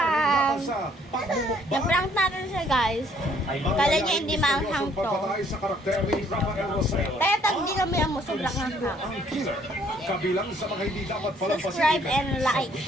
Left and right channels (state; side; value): normal; both; correlation 0.63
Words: laban sa pagmumukbang. Na-prank natin siya guys. Kala niya hindi maanghang to. Pagpatay sa karakter ni Rafael Rosel. Kaya tag hindi kami ang sobrang hanghang. Ang killer. Kabilang sa mga hindi dapat palampasin. Subscribe and like.